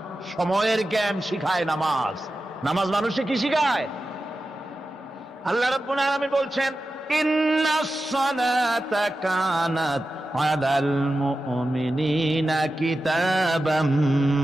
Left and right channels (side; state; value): both; normal; correlation 0.93